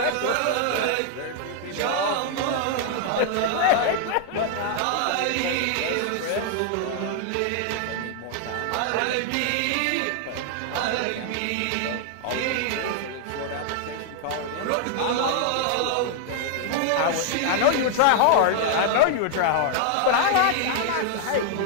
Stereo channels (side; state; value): both; different; correlation 0.00